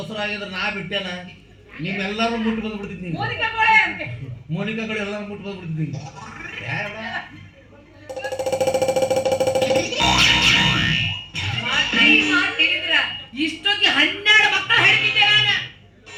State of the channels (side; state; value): both; identical; correlation 1.00